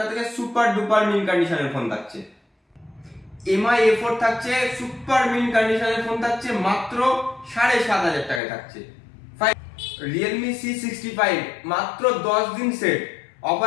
থেকে। সুপার ডুপার মিন কন্ডিশনের ফোন থাকছে। MI A4 থাকছে, সুপার মিন কন্ডিশনের ফোন থাকছে মাত্র 7,500 টাকায় থাকছে। Realme C65 মাত্র 10 দিন সেট,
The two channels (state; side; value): drops out; right; at 8.4 s